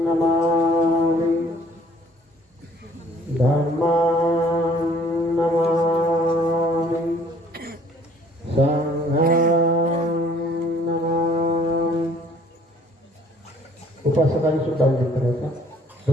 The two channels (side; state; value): both; normal; correlation 0.58